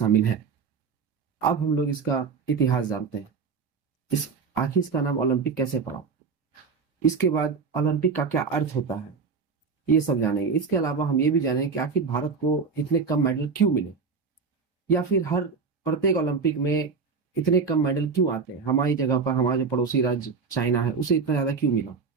है। अब हम लोग इसका इतिहास जानते हैं। इस आखिर इसका नाम ओलंपिक कैसे पड़ा, इसके बाद ओलंपिक का क्या अर्थ होता है, ये सब जानेंगे। इसके अलावा हम ये भी जानेंगे कि आखिर भारत को इतने कम मेडल क्यों मिले, या फिर हर प्रत्येक ओलंपिक में इतने कम मेडल क्यों आते हैं। हमारी जगह पर हमारा जो पड़ोसी राज्य चाइना है उसे इतना ज्यादा क्यों मिला,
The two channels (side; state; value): left; quieter; 5.2 dB